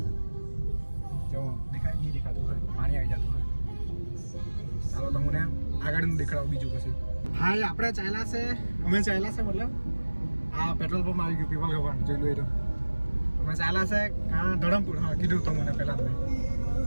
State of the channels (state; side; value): inverted; both; correlation -1.00